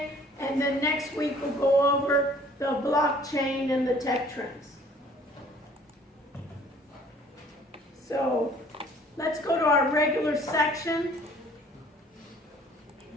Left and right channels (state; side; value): normal; both; correlation 0.55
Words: and then next week we'll go over the blockchain and the tech trends. So let's go to our regular section.